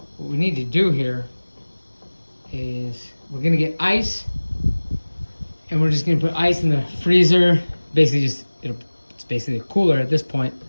What we need to do here is we're gonna get ice, and we're just gonna put ice in the freezer. Basically, it's basically a cooler at this point.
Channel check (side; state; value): both; inverted; correlation -1.00